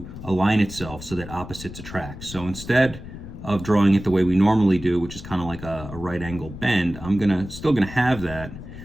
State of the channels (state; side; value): noise; left; rumble, 12 dB below the sound